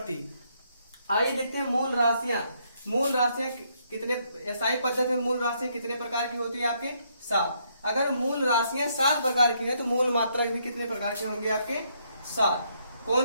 आइए देखते हैं मूल राशियां। मूल राशियां कितने एसआई पद्धति में मूल राशियां कितने प्रकार की होती है? आपके 7। अगर मूल राशियां 7 प्रकार की है तो मूल मात्रक भी कितने प्रकार के होंगे? आपके 7।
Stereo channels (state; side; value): inverted; both; correlation -0.73